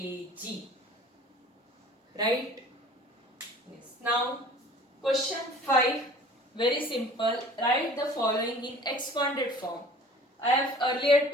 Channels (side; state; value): both; normal; correlation 0.47